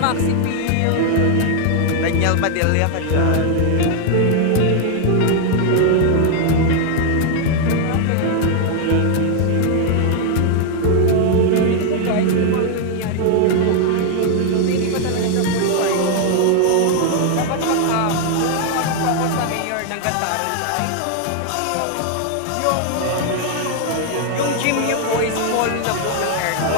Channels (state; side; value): different; both; correlation 0.00